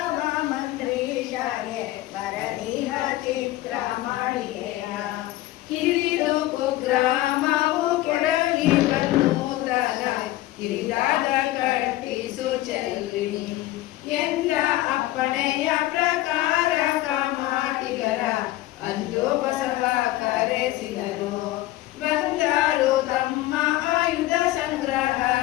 ಮಂತ್ರೀಶಾಗೆ ಬರದಿಹ ಚಿತ್ರ ಮಾಡಿಯ ಕಿರಿದು ಕುಗ್ರಾಮವು ಕೆಡಲಿ ಬನ್ನೂರನ ಕಿರಿದಾದ ಕಟ್ಟಿಸು ಚೆಲ್ಲಿ ಎಂದ ಅಪ್ಪಣೆಯ ಪ್ರಕಾರ ಕಾಮಾಟಿಗರ ಅಂದು ಬಸವ ಕರೆಸಿದರು. ಬಂದರು ತಮ್ಮ ಆಯುಧ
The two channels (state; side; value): quieter; right; 16.3 dB